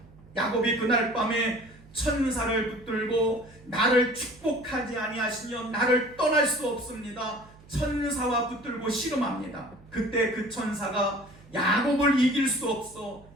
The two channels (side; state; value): right; noise; hum, 24 dB below the sound